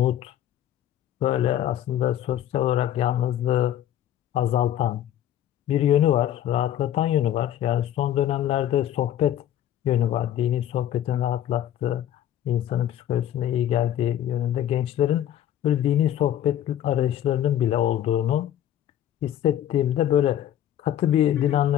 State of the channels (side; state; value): right; quieter; 11.4 dB